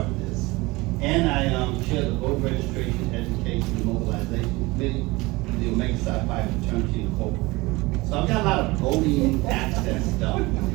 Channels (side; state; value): left; quieter; 22.4 dB